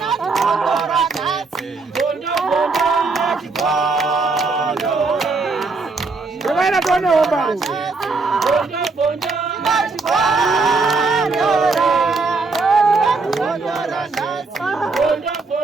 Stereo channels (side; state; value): left; quieter; 4.0 dB